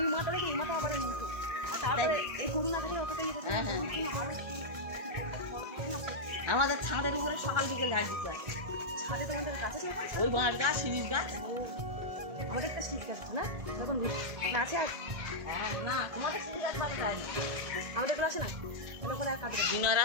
মাথা থেকে এই মাথা আবার এই মুঠো। আর তারপরে এই গরু না থাকলে অতটা ইয়ে থাকে না। হ্যাঁ, হ্যাঁ। আমাদের ছাদের উপরে সকাল বিকেল ঝাড় দিতে হয়। ছাদে তোমাদের কাছে ছিল না? ওই বাঁশ গাছ, শিরিষ গাছ। আমাদের একটা শীত গাছ না যখন আছে আর হ্যাঁ, না তোমাদের শিরিষ গাছ পাতা যায় না। আমাদের গুলো আছে না ওখানে আর কাটবে দিনার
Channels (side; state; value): left; late; 1.7 ms